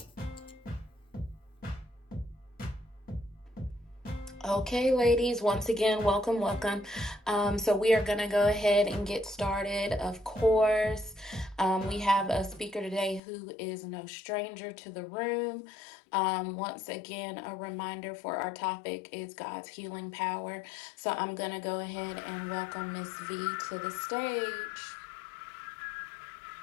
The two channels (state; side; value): drops out; right; at 13.2 s